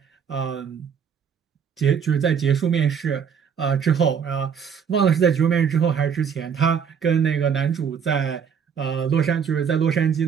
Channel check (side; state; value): left; quieter; 7.2 dB